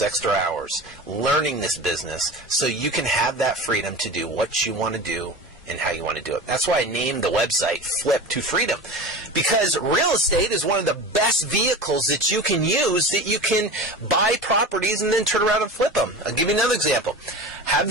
extra hours learning this business so you can have that freedom to do what you want to do and how you want to do it. That's why I named the website Flip to Freedom. Because real estate is one of the best vehicles that you can use, that you can buy properties and then turn around and flip them. I'll give you another example. Have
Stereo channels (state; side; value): normal; both; correlation 0.32